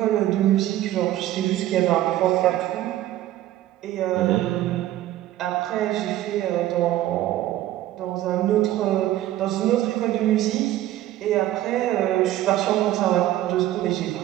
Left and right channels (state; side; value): quieter; left; 14.0 dB